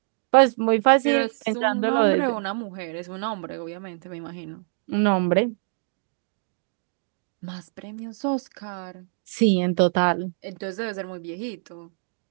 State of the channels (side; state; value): left; silent; digital silence